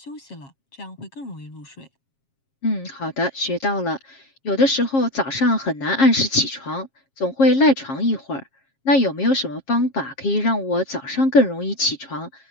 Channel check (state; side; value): late; right; 7.4 ms